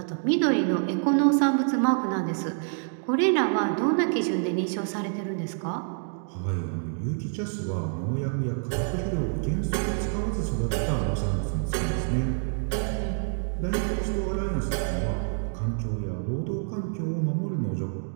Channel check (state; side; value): silent; left; 56 dB below the other